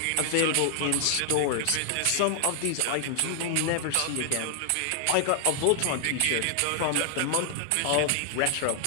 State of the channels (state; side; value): different; both; correlation 0.00